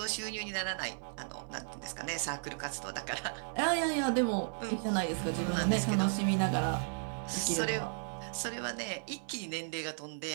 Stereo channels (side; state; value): left; silent; 55 dB below the other